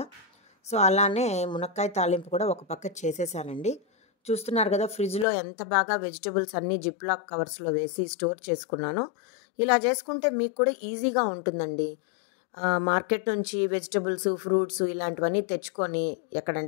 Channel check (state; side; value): drops out; right; at 5.2 s